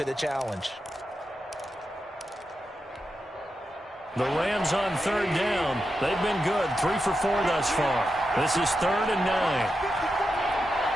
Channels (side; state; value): both; normal; correlation 0.88